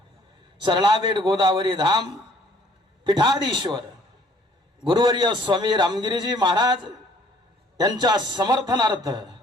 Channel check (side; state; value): both; normal; correlation 0.59